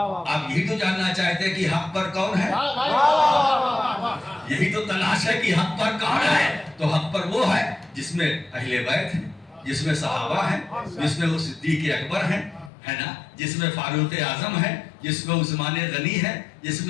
یہی تو جاننا چاہتے ہیں کہ حق پر کون ہے, یہی تو تلاش ہے کہ حق پر کون ہے. تو حق پر وہ ہے جس میں اہل بیت ہے, جس میں صحابہ ہیں, جس میں وہ صدیق اکبر ہیں, ہے نا, جس میں فاروق اعظم ہے, جس میں عثمان غنی ہے, جس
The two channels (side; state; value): right; drops out; at 12.7 s